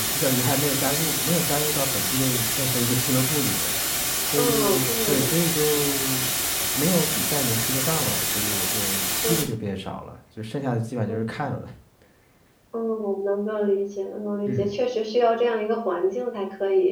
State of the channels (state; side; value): identical; both; correlation 1.00